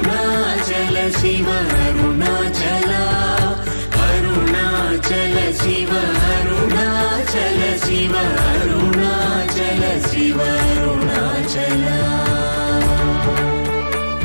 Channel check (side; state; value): both; inverted; correlation -1.00